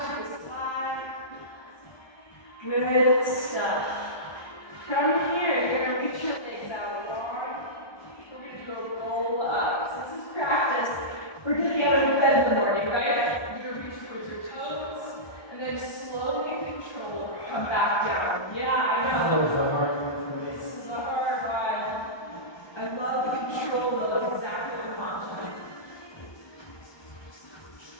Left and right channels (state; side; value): late; right; 1.2 ms